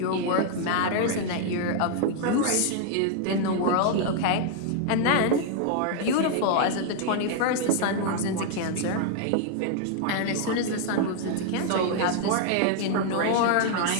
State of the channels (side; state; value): both; different; correlation 0.00